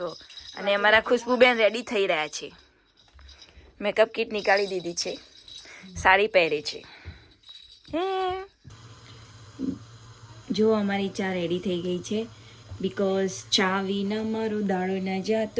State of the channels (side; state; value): both; identical; correlation 1.00